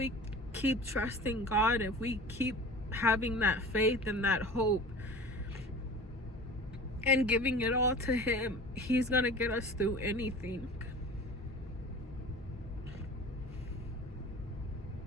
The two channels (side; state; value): both; normal; correlation 0.39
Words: keep trusting God, if we keep having that faith and that hope and giving it all to him, he's gonna get us through anything.